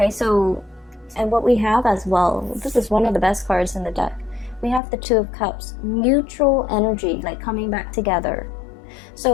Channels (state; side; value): drops out; right; at 4.8 s